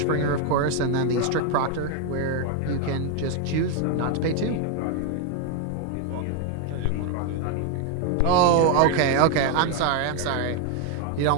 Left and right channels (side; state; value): both; different; correlation 0.01